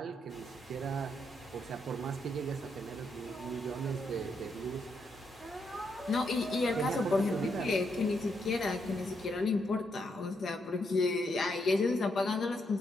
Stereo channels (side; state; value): both; normal; correlation 0.79